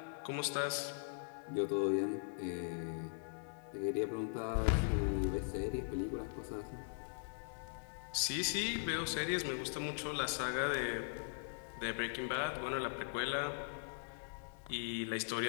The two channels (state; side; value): silent; right; digital silence